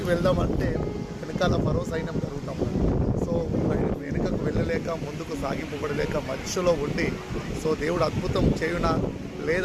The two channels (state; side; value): identical; both; correlation 1.00